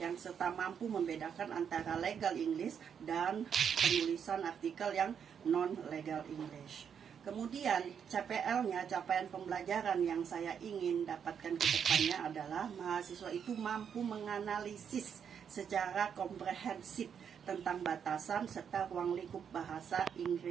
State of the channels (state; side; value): quieter; left; 7.6 dB